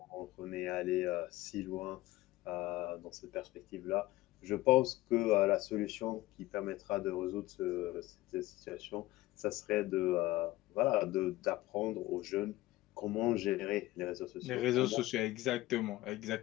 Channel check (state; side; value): quieter; right; 17.8 dB